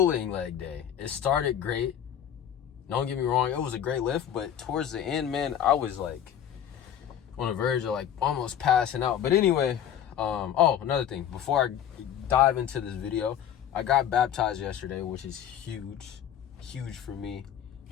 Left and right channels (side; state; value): right; quieter; 9.8 dB